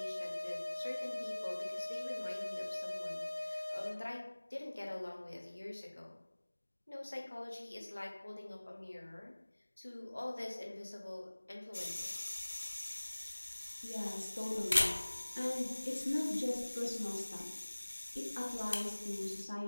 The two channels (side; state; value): both; inverted; correlation -1.00